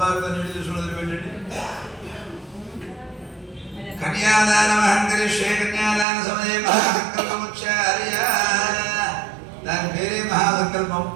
కన్యాదానమహం కరిష్యే. కన్యాదాన సమయే మహాసంకల్పముచ్చార్య. దాని పేరే మహాసంకల్పం.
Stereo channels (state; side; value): drops out; left; at 6.1 s